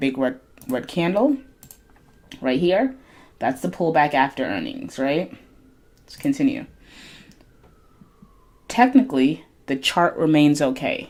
red candle right here? That's the pullback after earnings, right? Let's continue. Technically, the chart remains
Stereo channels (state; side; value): identical; both; correlation 1.00